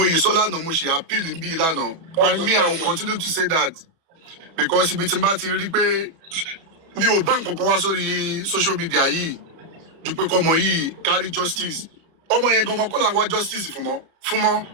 yìí sọ lánàá mo ṣe appeal bí lánàá and me I will continue to say that because ibi tí n bá ti rí pé mi ò bá nǹkan kan wá sórí social media yìí ju pé kọ́mọ yìí carry justice ọmọ yẹn gangan kọ́ là ń wá justice fún fúnmọ́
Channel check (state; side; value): late; left; 31 ms